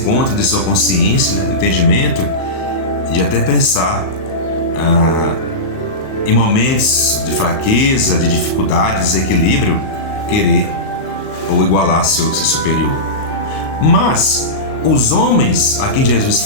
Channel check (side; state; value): right; late; 38 ms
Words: de sua consciência, né, entendimento, de até pensar em momentos de fraqueza, de dificuldade, de desequilíbrio, querer ou igualar seu superior. Mas os homens a quem Jesus